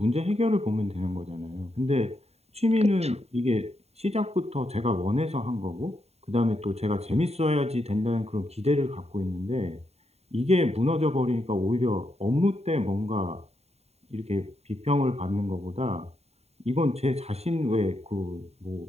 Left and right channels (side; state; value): left; late; 0.30 ms